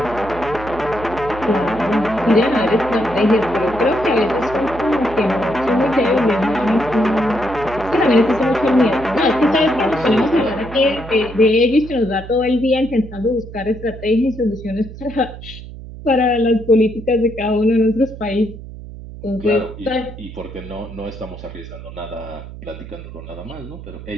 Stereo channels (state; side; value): noise; right; hum, 13 dB below the sound